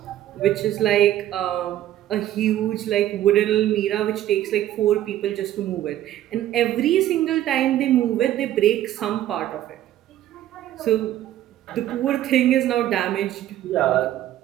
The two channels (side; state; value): left; quieter; 12.9 dB